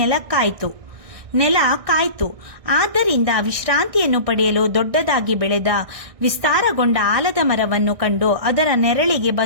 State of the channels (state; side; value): late; left; 1.6 ms